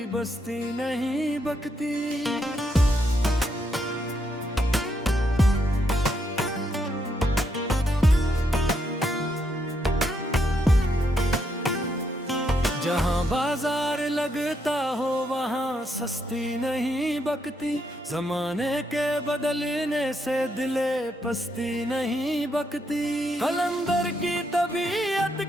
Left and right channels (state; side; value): normal; both; correlation 0.78